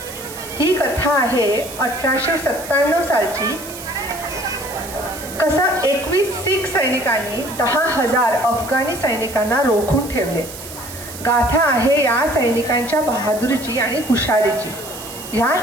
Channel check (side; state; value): right; noise; hiss, 13 dB below the sound